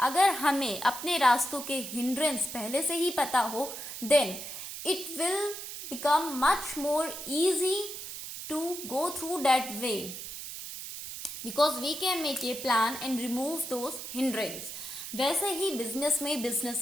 हमें अपने रास्तों के hindrance पहले से ही पता हो, then it will become much more easy to go through that way, because we can make a plan and remove those hindrance. वैसे ही बिजनेस में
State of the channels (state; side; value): noise; right; hiss, 9 dB below the sound